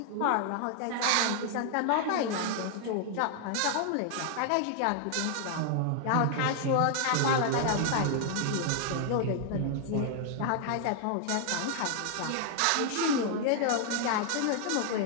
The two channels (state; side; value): different; both; correlation 0.00